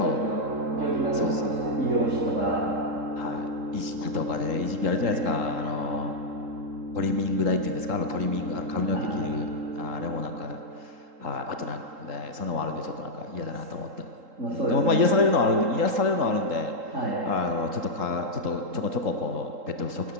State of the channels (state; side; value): late; left; 3.8 ms